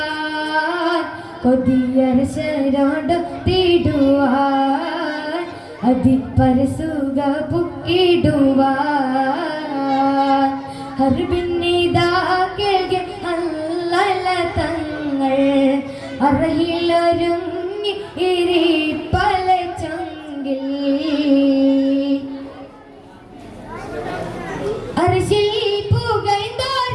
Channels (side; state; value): both; identical; correlation 1.00